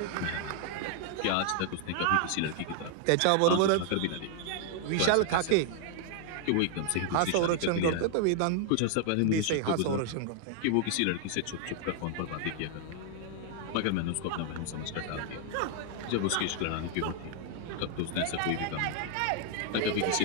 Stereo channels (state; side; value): different; both; correlation 0.00